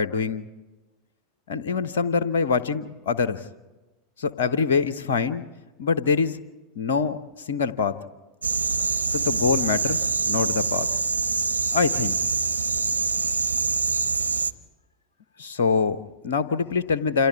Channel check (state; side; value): inverted; both; correlation -0.62